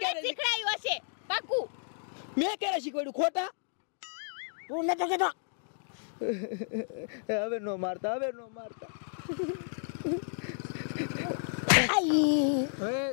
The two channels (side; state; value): right; silent; digital silence